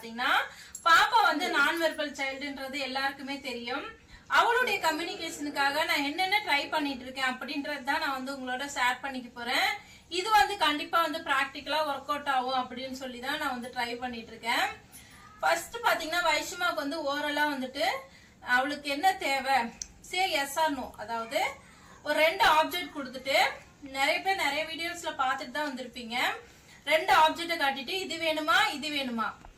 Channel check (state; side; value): identical; both; correlation 1.00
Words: பாப்பா வந்து நான் வெர்பல் சைல்டுன்றது எல்லாருக்குமே தெரியும். அவளுடைய கம்யூனிகேஷனுக்காக நான் என்னென்ன ட்ரை பண்ணிட்டு இருக்கேன் அப்படின்றது தான் நான் வந்து உங்களோட ஷேர் பண்ணிக்க போறேன். இது வந்து கண்டிப்பா வந்து பிராக்டிக்கலா ஒர்க் அவுட் ஆகும் அப்படின்னு சொல்லி தான் நான் வந்து ட்ரை பண்ணிட்டு இருக்கேன். ஃபர்ஸ்ட் பாத்தீங்கன்னா வைஷ்மாக்கு வந்து ஓரலா வந்துட்டு அவளுக்கு என்ன தேவை சே எஸ் ஆர் நோ, அதாவது ஒரு 2 ஆப்ஜெக்ட் கொடுத்துட்டு நிறைய பேர் நிறைய வீடியோஸ்ல பாத்துட்டு தான் வந்திருப்பீங்க. 2 ஆப்ஜெக்ட காட்டிட்டு இது வேணுமா இது வேணுமா